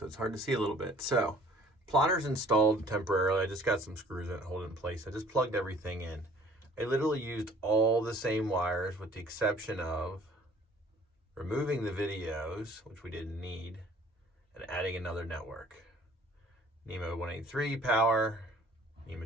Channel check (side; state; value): both; normal; correlation 0.53